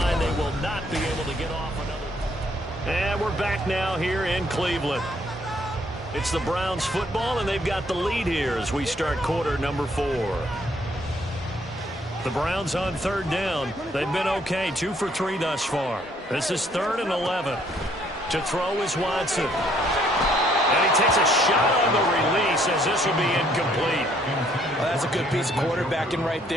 they will not be able to get off another. And we're back now here in Cleveland. It's the Browns football, and they've got the lead here as we start quarter number 4. The Browns on 3rd down. They've been okay, 2 for 3 thus far. This is 3rd and 11. To throw is Watson. And he takes a shot on the release as this will be incomplete. Well, that's a good piece of quarterbacking right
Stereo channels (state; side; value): normal; both; correlation 0.66